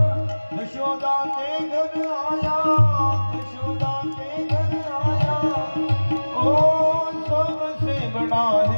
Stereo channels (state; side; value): inverted; both; correlation -1.00